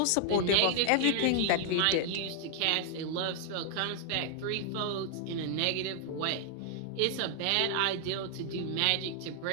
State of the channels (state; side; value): different; both; correlation 0.00